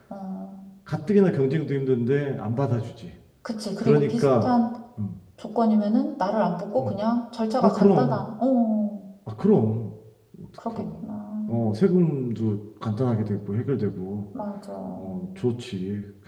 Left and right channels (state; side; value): identical; both; correlation 1.00